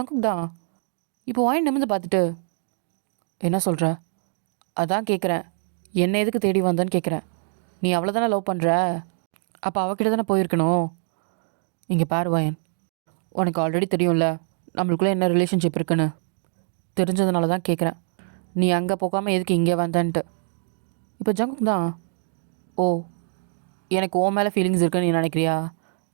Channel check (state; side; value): silent; left; digital silence